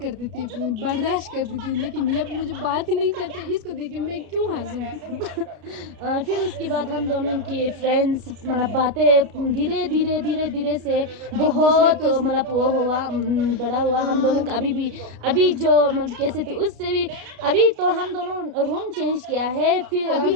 थी, बर्दाश्त करती थी, लेकिन ये मुझे बात ही नहीं करते। इसको देख के मैं क्यों हंसूं। फिर उसके बाद हम दोनों की फ्रेंड्स मतलब बातें धीरे धीरे धीरे धीरे से बहुत को मतलब वो हुआ, बड़ा हुआ हम दोनों का। अभी जो मतलब कैसे थे उससे भी अभी तो हम दोनों रूम चेंज किया है। फिर अभी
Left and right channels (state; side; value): late; left; 32 ms